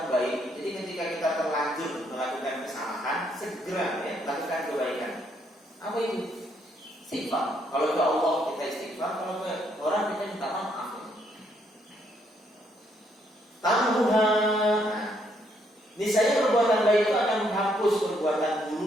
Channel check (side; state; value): both; normal; correlation 0.72